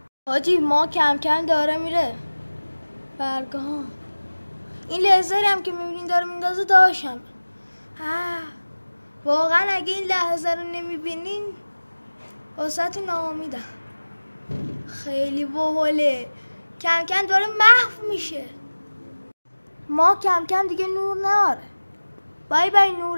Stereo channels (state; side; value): inverted; both; correlation -1.00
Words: حاجی ما کم کم داره میره برگاه. این لیزری هم که میبینین داره میندازه داشتم. واقعا اگه این لحظه رو نمیبینین واسه ناامیدم. خیلی باحاله. کم کم داره محو میشه. ما کم کم دیگه نور ناره. بای بای